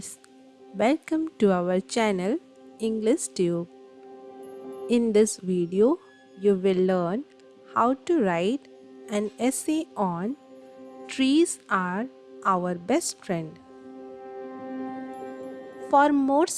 welcome to our channel English Tube. In this video, you will learn how to write an essay on trees are our best friend. For more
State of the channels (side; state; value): both; identical; correlation 1.00